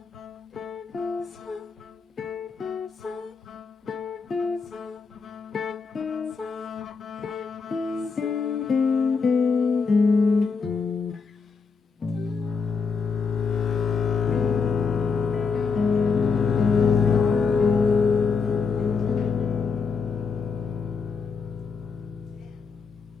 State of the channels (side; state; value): right; quieter; 5.2 dB